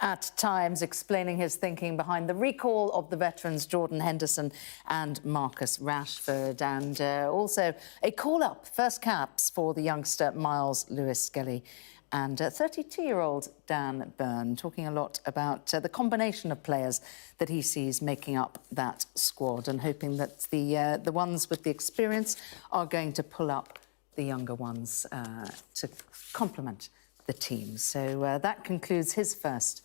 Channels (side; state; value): right; silent; 55 dB below the other